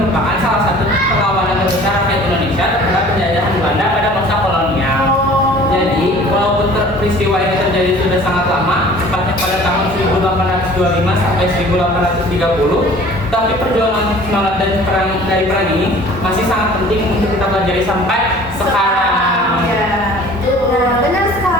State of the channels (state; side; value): normal; both; correlation 0.48